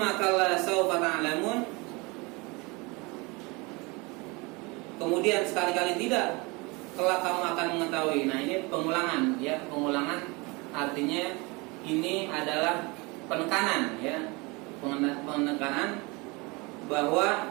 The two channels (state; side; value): quieter; left; 26.6 dB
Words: kalla sawfa ta'lamun. Kemudian sekali-kali tidak, kelak kamu akan mengetahui. Nah, ini pengulangan, ya. Pengulangan artinya ini adalah penekanan, ya. Penekanan bahwa